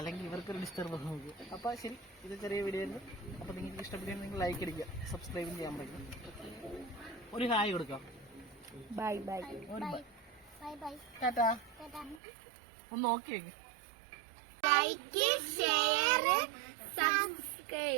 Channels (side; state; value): left; drops out; at 12.2 s